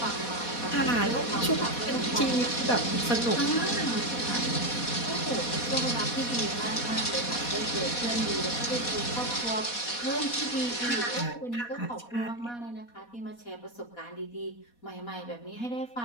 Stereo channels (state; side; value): late; right; 4.2 ms